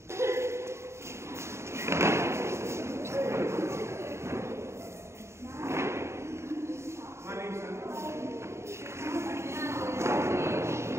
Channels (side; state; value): left; late; 0.13 ms